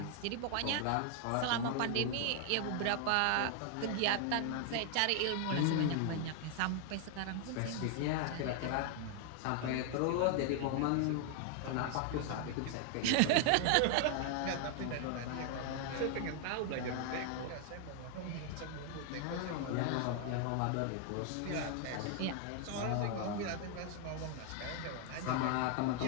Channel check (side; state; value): both; different; correlation 0.00